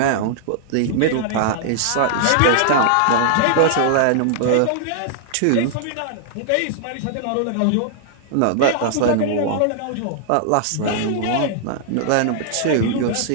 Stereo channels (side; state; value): both; different; correlation -0.01